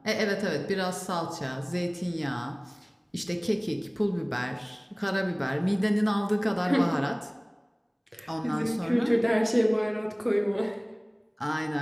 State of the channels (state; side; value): identical; both; correlation 1.00